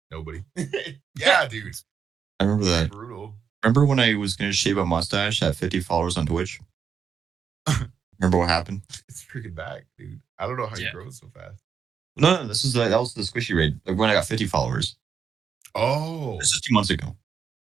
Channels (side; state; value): left; quieter; 6.9 dB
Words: Nobody. Yeah, dude. I remember that. Brutal. Remember when I was gonna shave a mustache at 50 followers on Twitch? Remember what happened? It's freaking back, dude. I don't know how you Yeah. grow so fast. No, this was that was the squishy raid. Like when I got 50 followers. Oh, This is 2 months ago.